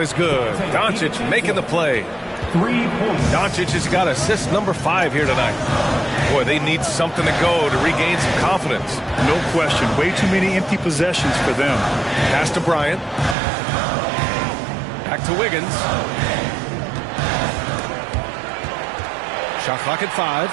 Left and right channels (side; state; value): left; drops out; at 13.4 s